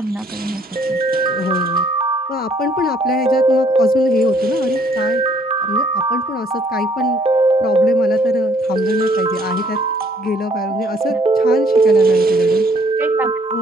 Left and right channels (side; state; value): both; normal; correlation 0.63